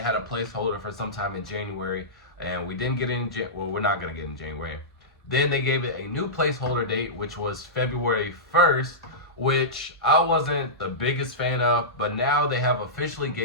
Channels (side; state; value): both; normal; correlation -0.15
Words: a placeholder for sometime in January. And we didn't get it in, well, we're not going to get it in January. Then they gave it a new placeholder date, which was February 1st, which I wasn't the biggest fan of, but now they have officially